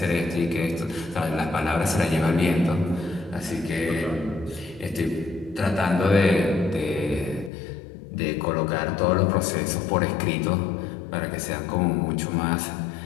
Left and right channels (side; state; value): right; drops out; at 7.5 s